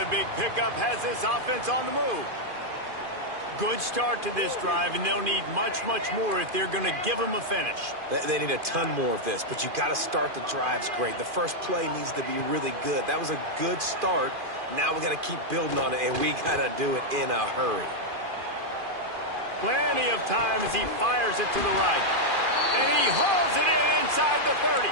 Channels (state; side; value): late; left; 2.5 ms